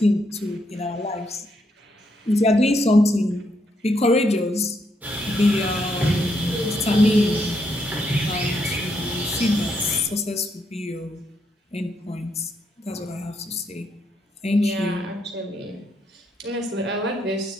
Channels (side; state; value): both; normal; correlation 0.77